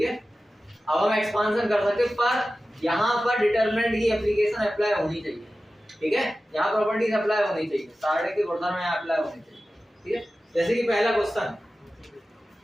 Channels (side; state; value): both; normal; correlation 0.95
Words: है, अब हम एक्सपांशन कर सकते हैं, पर यहाँ पर डिटरमिनेंट की एप्लीकेशन अप्लाई होनी चाहिए। ठीक है, यहाँ प्रॉपर्टीज अप्लाई होनी चाहिए, सारणी के गुणधर्म में अप्लाई होनी चाहिए। ठीक है, जैसे कि पहला क्वेश्चन